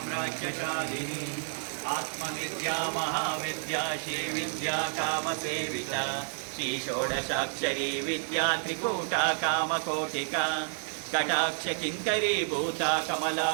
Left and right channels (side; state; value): left; silent; digital silence